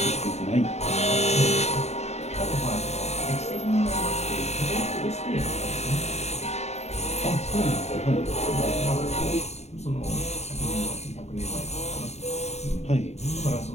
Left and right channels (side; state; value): right; late; 0.32 ms